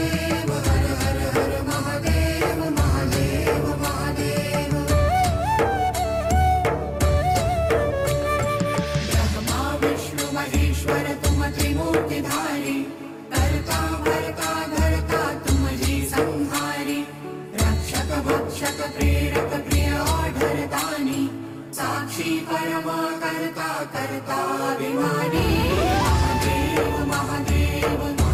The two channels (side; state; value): both; identical; correlation 1.00